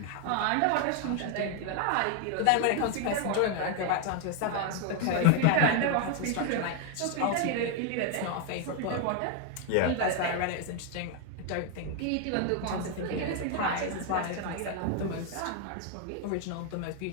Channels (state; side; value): different; both; correlation 0.01